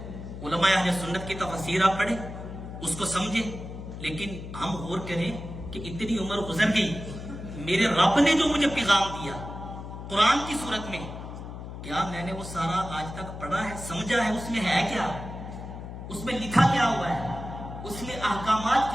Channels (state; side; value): noise; left; hum, 10 dB below the sound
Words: علماء اہل سنت کی تفسیر آپ پڑھیں، اس کو سمجھیں۔ لیکن ہم غور کریں کہ اتنی عمر گزر گئی، میرے رب نے جو مجھے پیغام دیا قرآن کی صورت میں، کیا میں نے وہ سارا آج تک پڑھا ہے، سمجھا ہے؟ اس میں ہے کیا؟ اس میں لکھا کیا ہوا ہے؟ اس میں احکامات